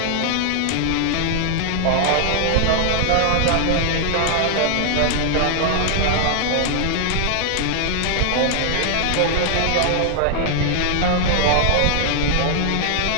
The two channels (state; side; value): different; both; correlation 0.00